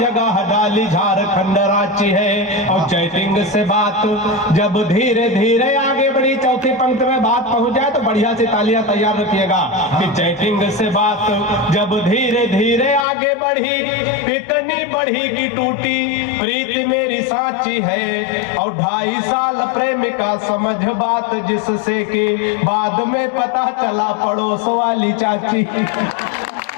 डाली झारखंड रांची है। और चैटिंग से बात जब धीरे धीरे आगे बढ़ी, चौथी पंक्ति में बात पहुंच जाए तो बढ़िया से तालियां तैयार रखिएगा कि चैटिंग से बात जब धीरे धीरे आगे बढ़ी, इतनी बढ़ी कि टूटी प्रीति मेरी साची है। और 2.5 साल प्रेमिका समझ बात जिससे कि बाद में पता चला पड़ोस वाली चाची।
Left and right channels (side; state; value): right; drops out; at 13.1 s